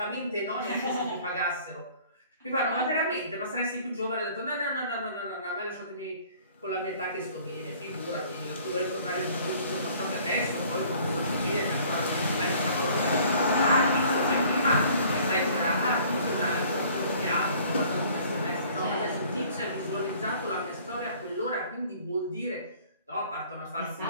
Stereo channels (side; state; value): both; inverted; correlation -0.54